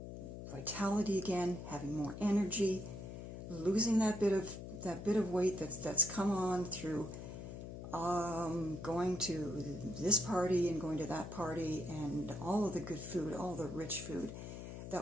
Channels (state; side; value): noise; left; hum, 9 dB below the sound